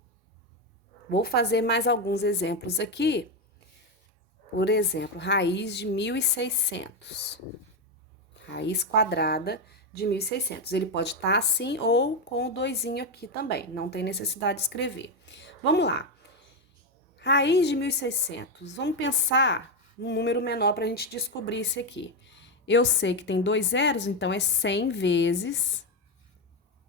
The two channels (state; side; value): normal; both; correlation 0.09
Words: Vou fazer mais alguns exemplos aqui. Por exemplo, raiz de 1.600. Raiz quadrada de 1.600. Ele pode estar assim ou com o 2 aqui também. Não tem necessidade de escrever. Vamos lá. Raiz de 1.600. Vamos pensar num número menor para a gente descobrir isso aqui. Eu sei que tem 2 zeros, então é 100 vezes